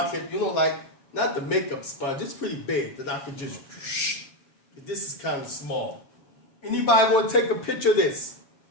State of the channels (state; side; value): late; right; 7.1 ms